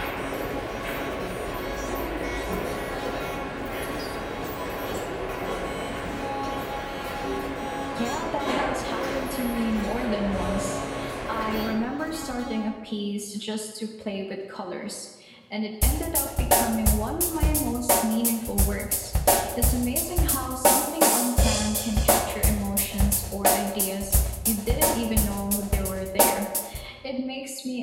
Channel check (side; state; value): both; identical; correlation 1.00